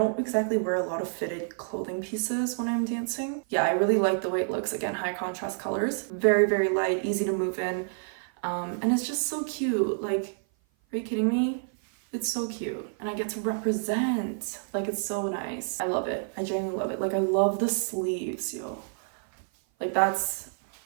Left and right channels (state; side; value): silent; left; 56 dB below the other